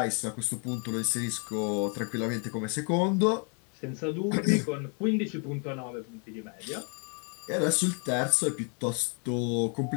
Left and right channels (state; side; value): quieter; right; 38.0 dB